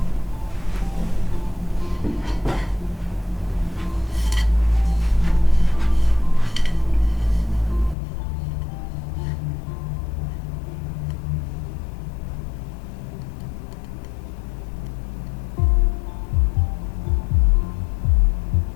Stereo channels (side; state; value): right; drops out; at 8.0 s